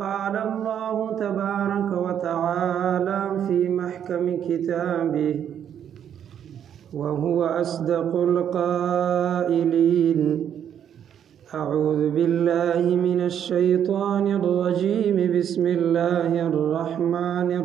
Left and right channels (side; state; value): left; quieter; 9.2 dB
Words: الله تبارك وتعالى في محكم كتابه وهو أصدق القائلين أعوذ بالله من الشيطان الرجيم بسم الله الرحمن